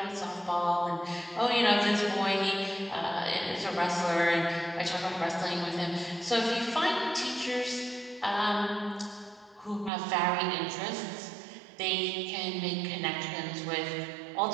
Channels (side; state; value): left; drops out; at 9.9 s